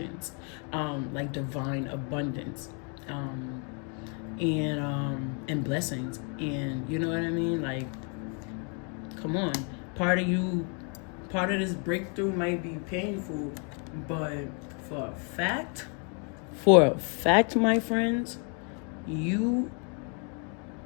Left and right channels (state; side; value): quieter; right; 38.0 dB